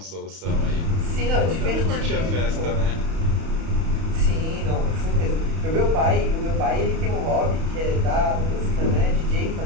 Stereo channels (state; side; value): late; left; 31 ms